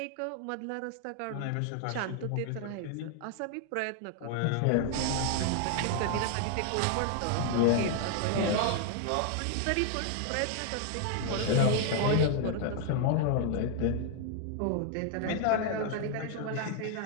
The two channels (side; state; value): both; different; correlation 0.00